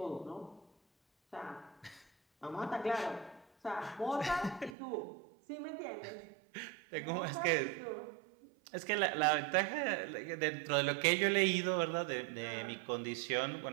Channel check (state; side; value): drops out; left; at 4.8 s